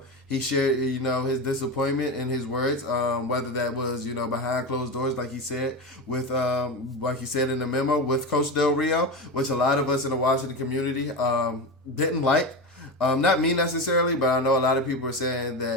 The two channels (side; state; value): both; normal; correlation 0.21